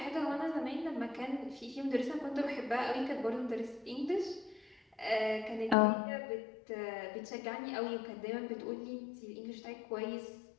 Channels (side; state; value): right; drops out; at 5.8 s